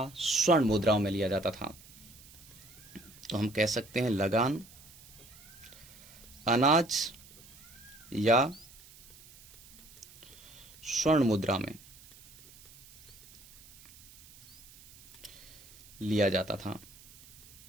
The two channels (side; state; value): right; noise; hiss, 21 dB below the sound